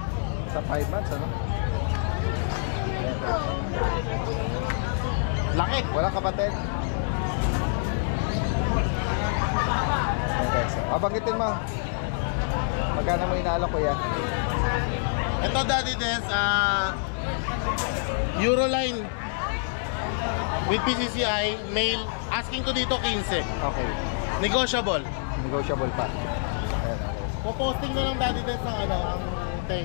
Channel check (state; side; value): silent; right; digital silence